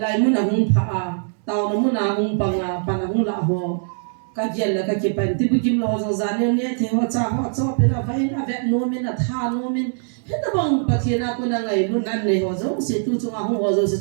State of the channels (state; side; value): silent; left; digital silence